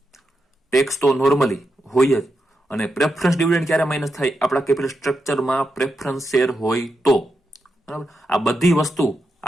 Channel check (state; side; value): normal; both; correlation 0.85